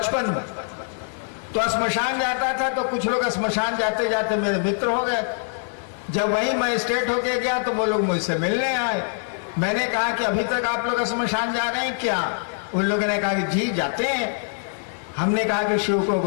में। तो श्मशान जाता था तो कुछ लोग श्मशान जाते जाते मेरे मित्र हो गए। जब वही मजिस्ट्रेट होके गया तो वो लोग मुझसे मिलने आए। मैंने कहा कि अभी तक आप लोग श्मशान जा रहे हैं क्या? उन लोगों ने कहा कि जी जाते हैं। हमने कहा कि शिव को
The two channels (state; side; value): silent; right; 63 dB below the other